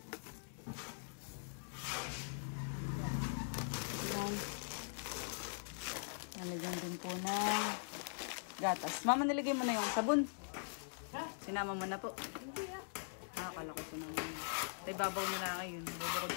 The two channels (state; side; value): silent; right; digital silence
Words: Nalagyan din po ng gatas. Mama, nilagay mo na yung sabon. Sinama mo na po. Akala ko sinama mo na. Tay, babaw na lang ngayon. Bubukod